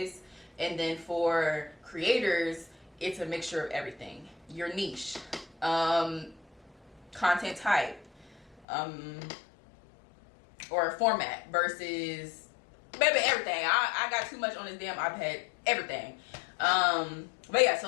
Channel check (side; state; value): right; drops out; at 8.6 s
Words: And then for creators, it's a mixture of everything. Your niche, content type, or format versus, baby, everything. I got too much on this damn iPad, everything. But yeah,